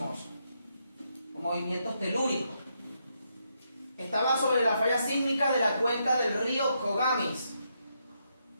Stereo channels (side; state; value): both; inverted; correlation -0.79